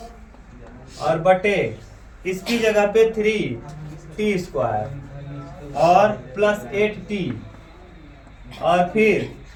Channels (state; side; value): identical; both; correlation 1.00